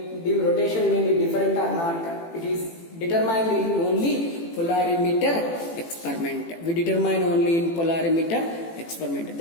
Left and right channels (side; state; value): right; late; 18 ms